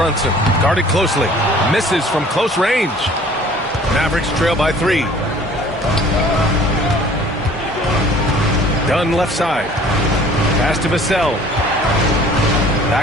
Guarded closely. Misses from close range. Mavericks trail by 3. Dunn left side. Pass to Vassell.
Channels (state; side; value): normal; both; correlation 0.51